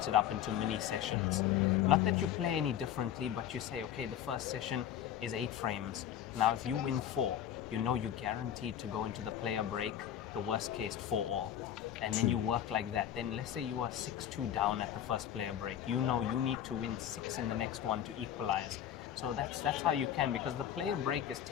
it up into mini sessions. Not that you play any differently, but you say, okay, the first session is 8 frames. Now if you win 4, you know you're guaranteed to go into the player break, the worst case 4-all. And then you work like that. Then let's say you are 6-2 down at the first player break. You know you need to win 6 in the next one to equalize. So that's how you can, because the player break is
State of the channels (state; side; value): quieter; right; 10.3 dB